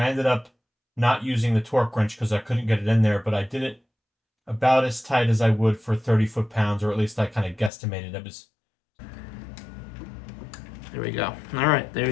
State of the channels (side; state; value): right; drops out; at 7.7 s